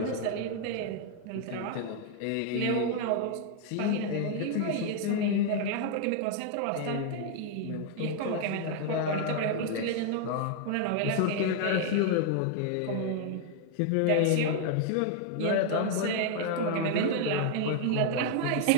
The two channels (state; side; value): different; both; correlation 0.00